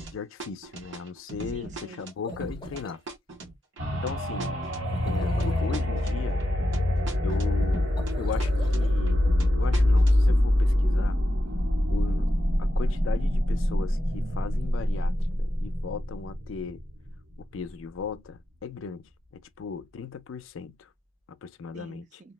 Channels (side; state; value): both; normal; correlation 0.88